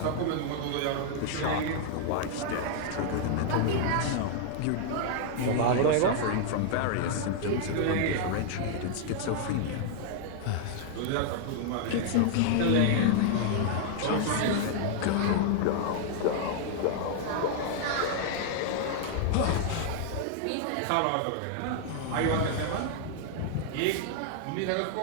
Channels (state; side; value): different; both; correlation 0.00